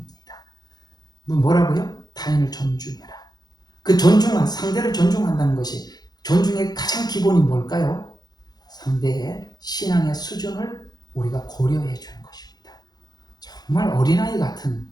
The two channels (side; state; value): right; late; 0.19 ms